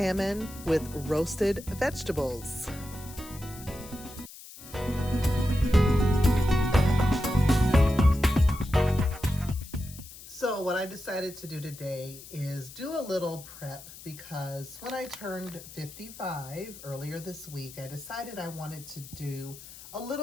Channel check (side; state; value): left; noise; hiss, 16 dB below the sound